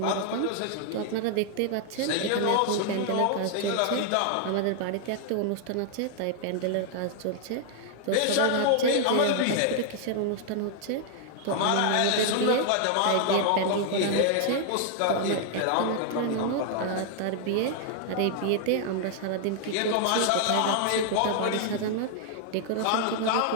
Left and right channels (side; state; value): both; different; correlation 0.00